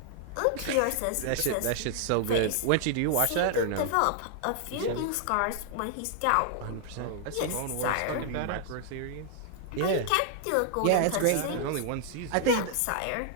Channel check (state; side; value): different; both; correlation 0.00